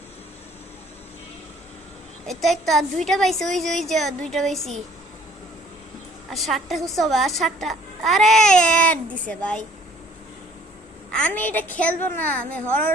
এটা একটা আর 2টা পাইছি, ওই যে 2টা পাইছি, আর 7টা খুঁজতে হবে, আর 7টা। আরে অ্যাড দিছে ভাই। আমি এটা খেলবো না, আমি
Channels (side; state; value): both; normal; correlation 0.57